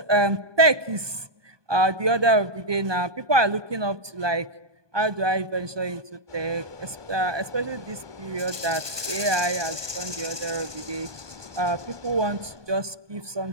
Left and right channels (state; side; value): late; left; 1.2 ms